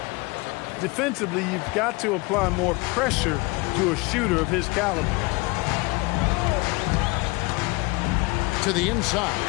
Defensively, you've got to apply more pressure to a shooter of his caliber. To the inside.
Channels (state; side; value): quieter; right; 24.7 dB